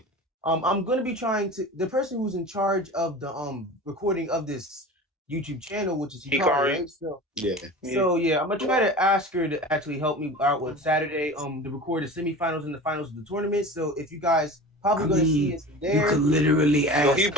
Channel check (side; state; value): both; normal; correlation 0.35